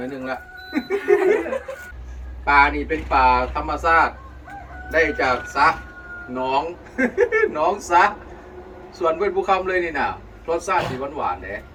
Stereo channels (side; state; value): both; identical; correlation 1.00